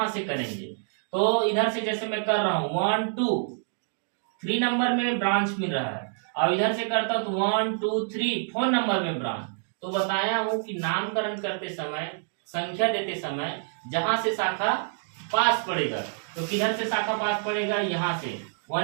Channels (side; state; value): left; silent; digital silence